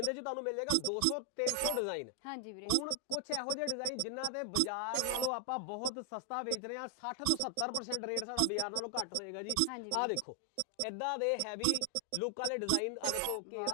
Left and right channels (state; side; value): different; both; correlation 0.00